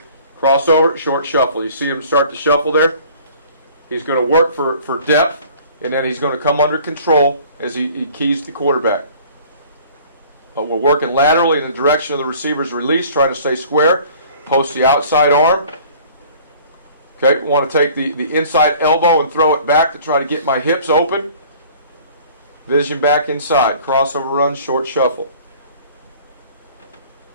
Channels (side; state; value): both; inverted; correlation -0.50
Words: Crossover, short shuffle. You see him start to shuffle there? He's going to work for depth, and then he's going to come under control as he keys the quarterback. We're working laterally in the direction of the receiver's release, trying to stay square. Post the outside arm. Okay, want to take the inside elbow and throw it back to try to get my hips open. Vision back inside. Crossover run, short shuffle.